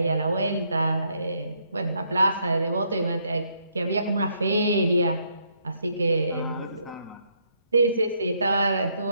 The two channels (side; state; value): both; inverted; correlation -0.73